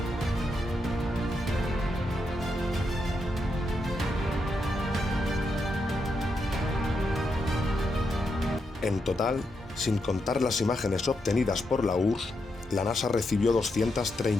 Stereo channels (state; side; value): normal; both; correlation 0.83